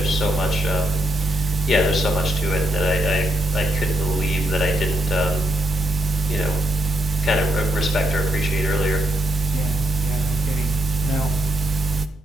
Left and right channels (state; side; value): normal; both; correlation 0.80